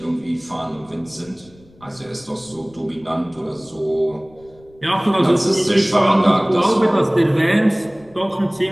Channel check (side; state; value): left; noise; rumble, 27 dB below the sound